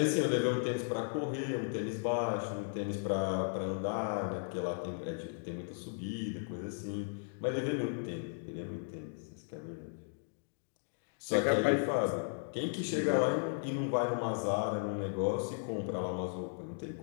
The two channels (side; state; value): right; silent; digital silence